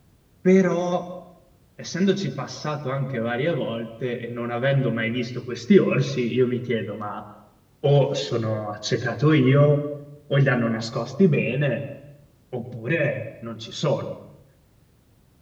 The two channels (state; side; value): identical; both; correlation 1.00